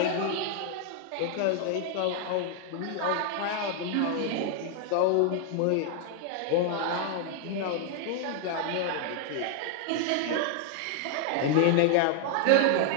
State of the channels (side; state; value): both; different; correlation 0.00